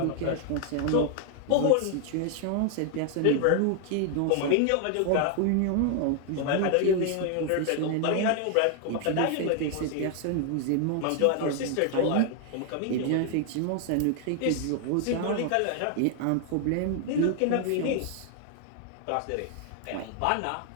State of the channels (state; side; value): different; both; correlation 0.00